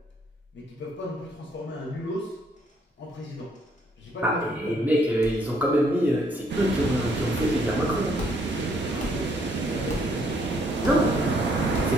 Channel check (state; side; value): normal; both; correlation 0.68